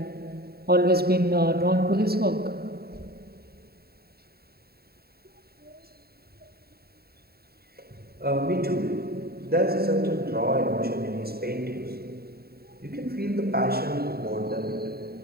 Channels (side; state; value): left; late; 0.45 ms